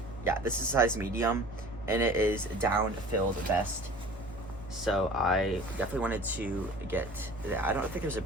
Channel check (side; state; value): right; noise; hum, 18 dB below the sound